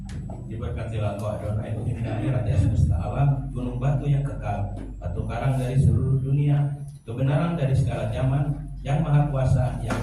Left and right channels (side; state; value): both; identical; correlation 1.00